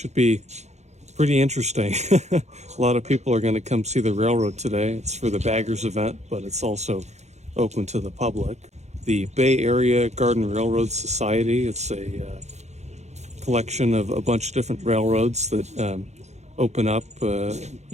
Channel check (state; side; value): late; left; 0.33 ms